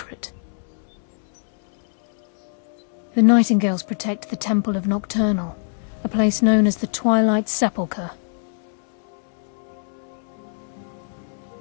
The Nightingales protect the Temple of Nocturnal, a place known as the Twilight Sepulcher.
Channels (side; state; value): right; silent; digital silence